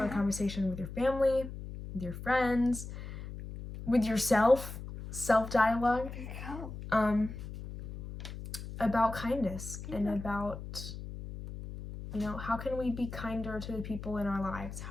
a conversation with your family, with your friends, with yourself, self-dialogue, about kindness and about, how can we be kinder to the people in our lives?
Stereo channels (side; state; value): left; noise; hum, 10 dB below the sound